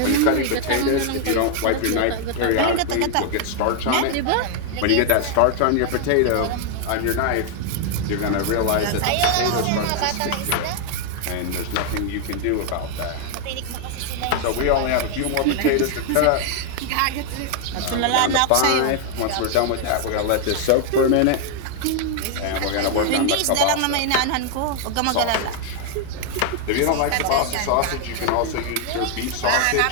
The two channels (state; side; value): different; both; correlation 0.00